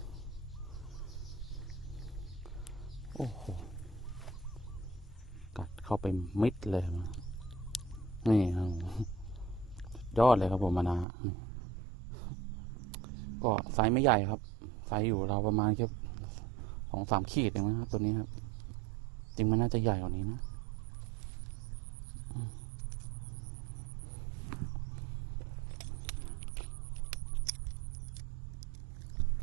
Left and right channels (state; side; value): drops out; left; at 11.1 s